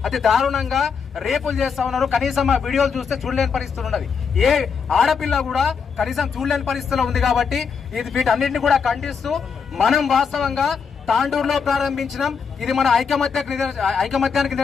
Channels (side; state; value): right; quieter; 6.1 dB